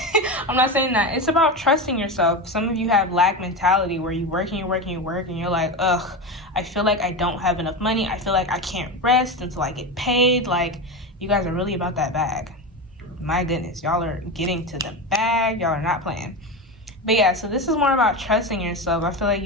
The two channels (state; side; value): normal; both; correlation 0.20